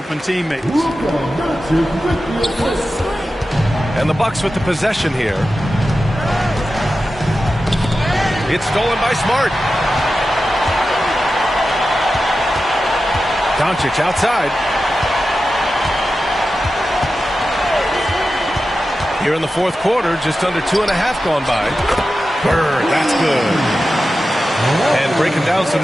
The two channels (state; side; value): normal; both; correlation 0.92